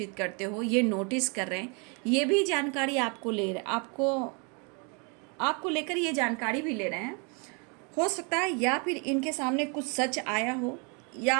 करते हो, ये नोटिस कर रहे हैं, ये भी जानकारी आपको ले रहे, आपको लेकर ये जानकारी भी ले रहे हैं। हो सकता है या फिर इनके सामने कुछ सच आया हो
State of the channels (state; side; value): quieter; left; 34.1 dB